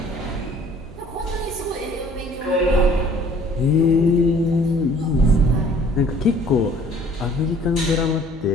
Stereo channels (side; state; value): both; normal; correlation 0.55